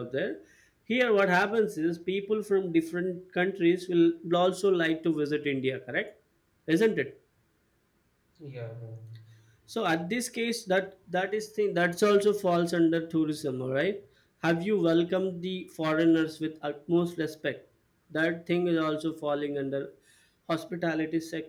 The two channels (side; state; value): both; identical; correlation 1.00